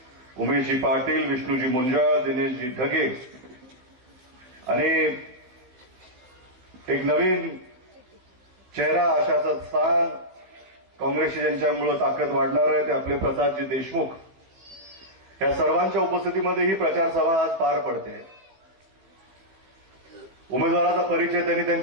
उमेशजी पाटील, विष्णूजी मुंजाळ, दिनेशजी ढगे आणि एक नवीन चेहरा आशाचं स्थान काँग्रेसची ज्यांच्यामुळे ताकद वाढणार आहे ते आपले प्रसादजी देशमुख, या सर्वांच्या उपस्थितीमध्ये ही प्रचार सभा आज पार पडते. उमेदवाराचा परिचय त्यांनी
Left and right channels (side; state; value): left; late; 16 ms